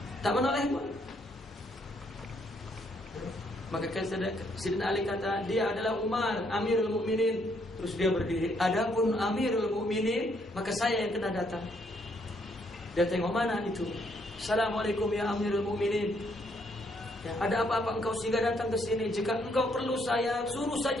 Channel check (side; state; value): both; normal; correlation 0.71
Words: Tak menoleh pun. Maka Sayyidina Ali kata, dia adalah Umar, Amirul Mukminin. Terus dia berdiri. Adapun Amirul Mukminin, maka saya yang kena datang. Dia tengok, mana itu? Assalamualaikum ya Amirul Mukminin. Ya, ada apa-apa engkau sehingga datang ke sini? Jika engkau perlu saya, suruh